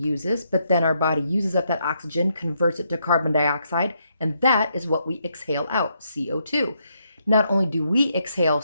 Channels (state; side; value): inverted; both; correlation -0.77